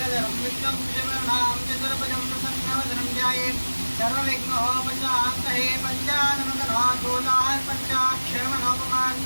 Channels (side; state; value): both; inverted; correlation -1.00